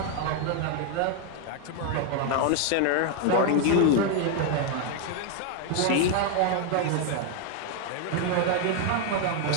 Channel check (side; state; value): both; different; correlation 0.01